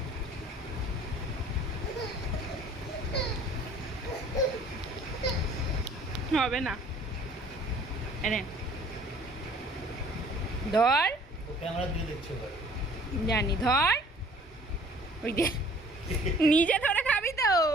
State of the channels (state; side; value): normal; both; correlation 0.53